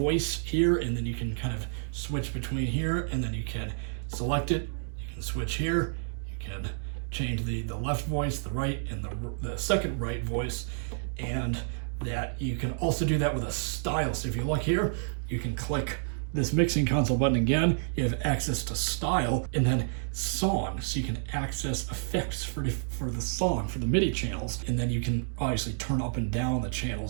here, and then you can kind of switch between here, and then you can select it. You can switch here. You can change the left voice, the right, and the second right voice, and that you can also do that with a style. So if you look here, you can click this mixing console button again. You have access to style, and then song, so you can access effects for the song, for the MIDI channels, and then you can obviously turn up and down the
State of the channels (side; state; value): left; silent; digital silence